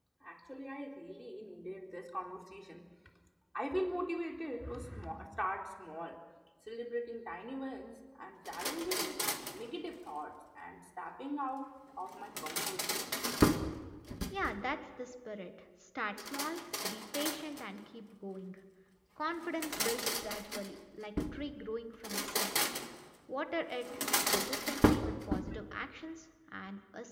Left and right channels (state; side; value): identical; both; correlation 1.00